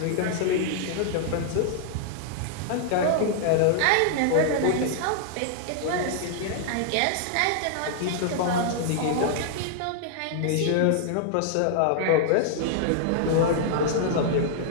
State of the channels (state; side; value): different; both; correlation -0.01